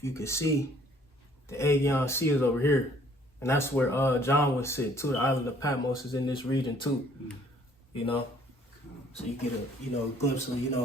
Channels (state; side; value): normal; both; correlation 0.60